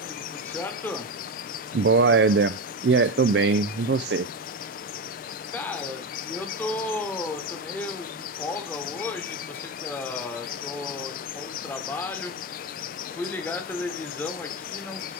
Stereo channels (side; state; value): both; normal; correlation 0.15